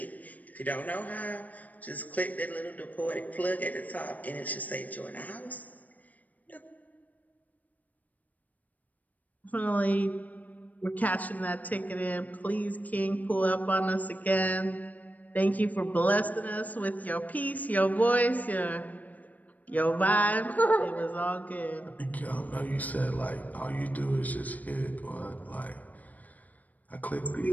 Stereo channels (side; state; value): right; late; 0.077 ms